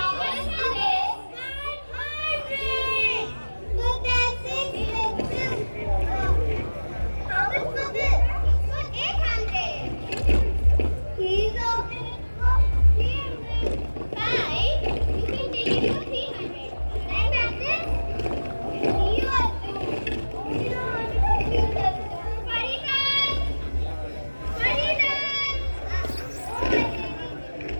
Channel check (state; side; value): inverted; both; correlation -1.00